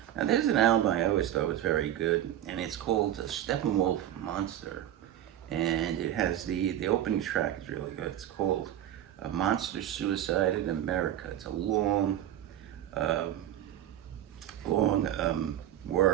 there's an album I always thought was very good, and it's called Steppenwolf Monster, and it has the opening track is really good. It's called Monster Suicide in America. It's a long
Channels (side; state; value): left; quieter; 11.7 dB